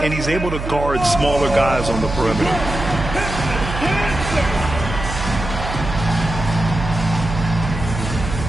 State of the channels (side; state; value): right; noise; hum, 6 dB below the sound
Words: and he's able to guard smaller guys on the perimeter.